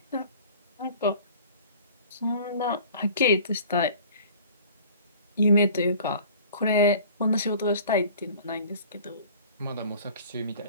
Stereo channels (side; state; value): both; inverted; correlation -0.47